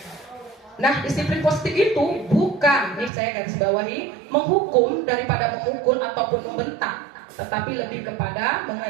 Nah, disiplin positif itu bukan, nih saya garis bawahi, menghukum daripada memukul ataupun membentak, tetapi lebih kepada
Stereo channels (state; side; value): drops out; left; at 3.1 s